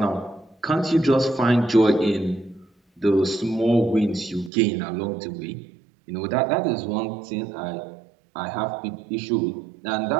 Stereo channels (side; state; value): left; drops out; at 4.5 s